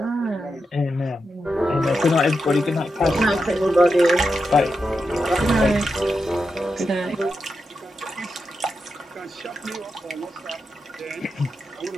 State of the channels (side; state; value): both; normal; correlation 0.87